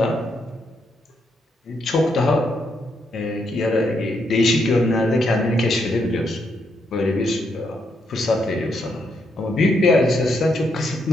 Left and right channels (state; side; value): normal; both; correlation 0.78